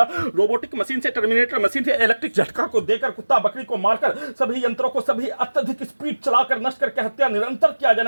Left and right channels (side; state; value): both; inverted; correlation -1.00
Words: रोबोटिक मशीन से टर्मिनेटर मशीन से इलेक्ट्रिक झटका को देकर कुत्ता बकरी को मारकर सभी यंत्रों को सभी अत्यधिक स्पीड चलाकर नष्ट करके हत्या, निरंतर किया